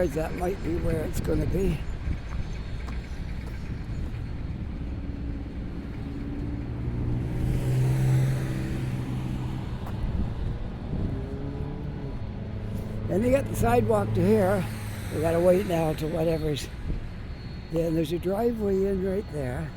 that might be where it's going to be. And they got the sidewalk to here. We got to wait now to whatever's. Yeah, and there's a driveway in right there.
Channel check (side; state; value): both; identical; correlation 1.00